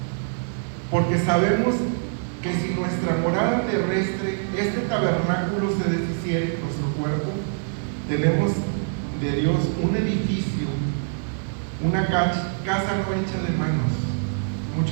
porque sabemos que si nuestra morada terrestre, este tabernáculo, se deshiciere, nuestro cuerpo, tenemos de Dios un edificio, una casa no hecha de manos,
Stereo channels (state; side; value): silent; left; 57 dB below the other